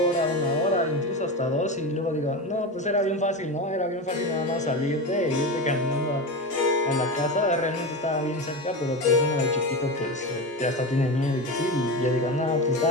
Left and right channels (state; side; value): normal; both; correlation 0.21